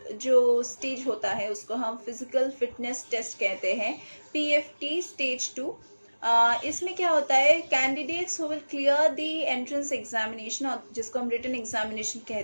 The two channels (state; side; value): inverted; both; correlation -1.00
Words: जो स्टेज होता है उसको हम फिजिकल फिटनेस टेस्ट कहते हैं, PFT स्टेज 2। इसमें क्या होता है, candidates who will clear the entrance examination, जिसको हम रिटन एग्जामिनेशन